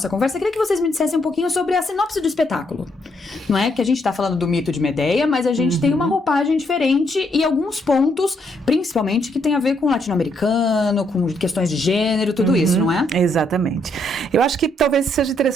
conversa, eu queria que vocês me dissessem um pouquinho sobre a sinopse do espetáculo. Não é que a gente tá falando do mito de Medea, mas a gente tem uma roupagem diferente e alguns pontos, principalmente, que tem a ver com o latino-americano, com questões de gênero, tudo isso, não é? Exatamente. Eu acho que talvez seja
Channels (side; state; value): both; normal; correlation 0.74